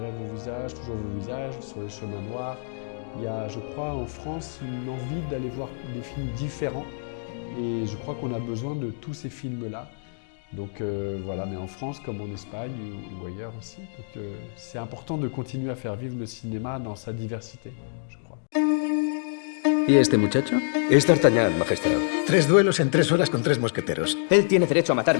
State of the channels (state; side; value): silent; right; digital silence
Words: vos visages, toujours vos visages, sur les chemins noirs. Il y a, je crois, en France, une envie d'aller voir des films différents et je crois qu'on a besoin de tous ces films-là. Donc voilà, mais en France comme en Espagne ou ailleurs aussi. Donc c'est important de continuer à faire vivre le cinéma dans sa diversité, je crois. ¿Y este muchacho? Es D'Artagnan, Majestad. 3 duelos en 3 horas con 3 mosqueteros. Él tiene derecho a